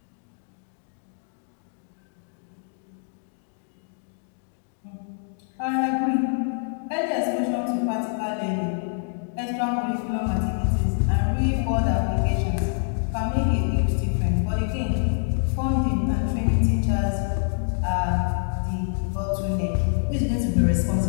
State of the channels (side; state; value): right; silent; digital silence